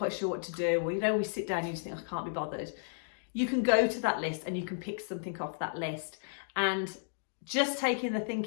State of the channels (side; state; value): right; silent; digital silence